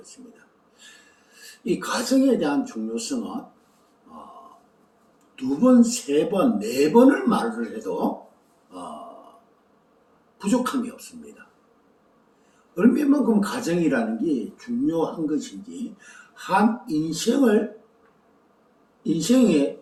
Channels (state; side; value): identical; both; correlation 1.00